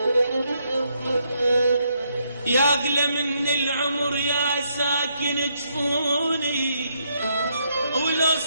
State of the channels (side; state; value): both; inverted; correlation -0.76